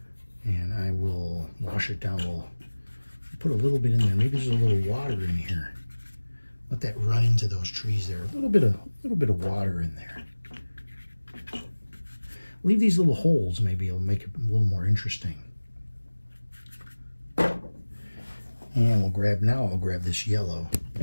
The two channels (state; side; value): inverted; both; correlation -1.00